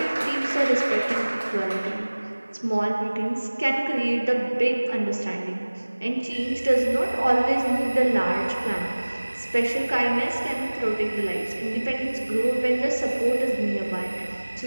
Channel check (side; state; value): both; inverted; correlation -1.00